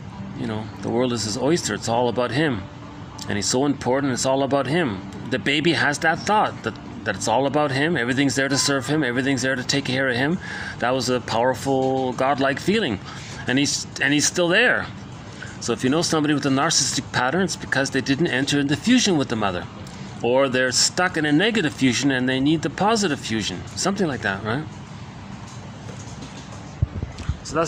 the world is his oyster. It's all about him. And he's so important, it's all about him. The baby has that thought that it's all about him. Everything's there to serve him. Everything's there to take care of him. That was a powerful, godlike feeling. And he's still there. So if you know somebody with a narcissistic pattern, it's because they didn't enter into fusion with the mother. Or they're stuck in a negative fusion and they need the positive fusion. Something like that, right? So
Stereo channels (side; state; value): both; identical; correlation 1.00